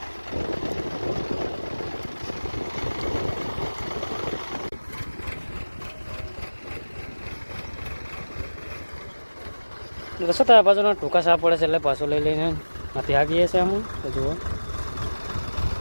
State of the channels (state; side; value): inverted; both; correlation -1.00